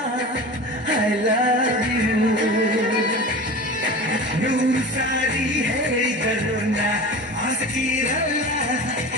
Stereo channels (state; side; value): normal; both; correlation 0.33